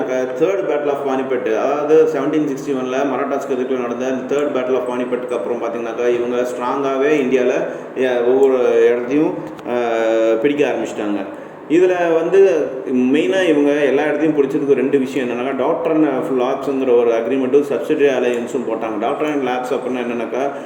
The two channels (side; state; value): both; identical; correlation 1.00